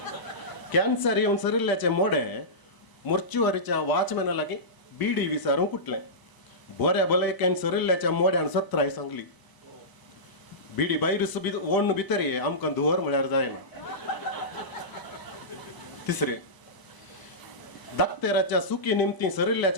कॅन्सर येवन सरिल्ल्याचे मोडे मोर्चुवारीच्या वॉचमॅना लागीं बिडी विचारूंक उठले. बऱ्या भलायकेन सरिल्ल्याच्या मोड्यान सत्राय सांगली बिडी भायर ओडून भितर ये आमकां धुवर म्हळ्यार जायना. तिसरें दाक्तेराच्या सुकी निमती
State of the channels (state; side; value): late; right; 1.0 ms